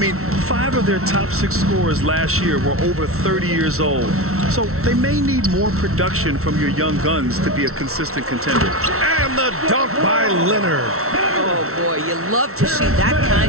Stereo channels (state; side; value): late; left; 0.63 ms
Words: 5 of their top 6 scorers last year were over 30 years old. So they may need more production from your young guns to be a consistent contender. And the dunk by Leonard. Oh, boy, you love to see that